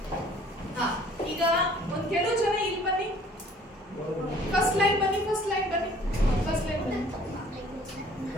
ಈಗ ಒಂದ್ ಕೆಲವು ಜನ ಇಲ್ಲಿ ಬನ್ನಿ, ಫಸ್ಟ್ ಲೈನ್ ಬನ್ನಿ.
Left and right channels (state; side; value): normal; both; correlation 0.55